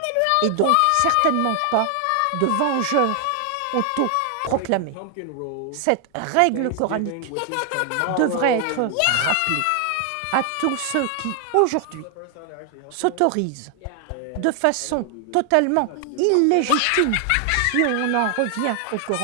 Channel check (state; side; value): different; both; correlation 0.00